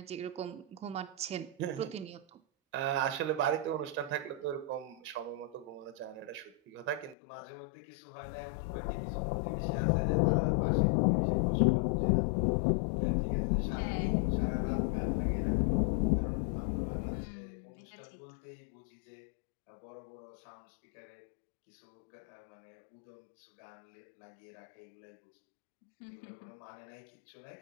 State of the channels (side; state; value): right; drops out; at 7.2 s